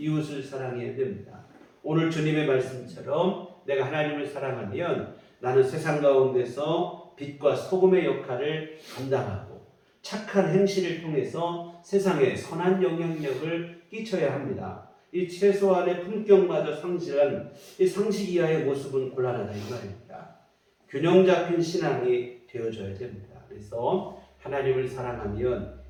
사랑해야 됩니다. 오늘 주님의 말씀처럼 내가 하나님을 사랑하면 나는 세상 가운데서 빛과 소금의 역할을 감당하고 착한 행실을 통해서 세상에 선한 영향력을 끼쳐야 합니다. 이 최소한의 품격마저 상실한 이 상식 이하의 모습은 곤란하다 이 말입니다. 균형 잡힌 신앙이 되어져야 됩니다. 그래서 하나님을 사랑하면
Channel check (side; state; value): both; identical; correlation 1.00